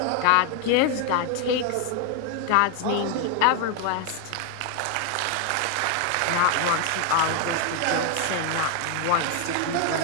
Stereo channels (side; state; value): both; different; correlation 0.00